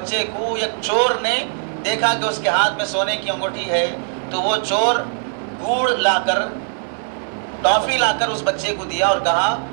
کو ایک چور نے دیکھا کہ اس کے ہاتھ میں سونے کی انگوٹھی ہے، تو وہ چور گڑ لا کر، ٹافی لا کر اس بچے کو دیا اور کہا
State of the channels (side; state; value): left; silent; digital silence